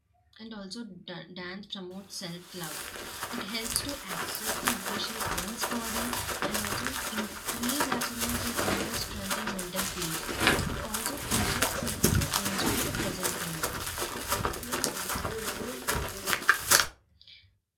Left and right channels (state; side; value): identical; both; correlation 1.00